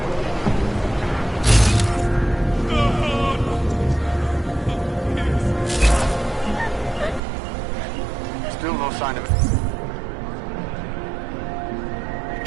Still no sign of it.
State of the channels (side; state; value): left; drops out; at 7.2 s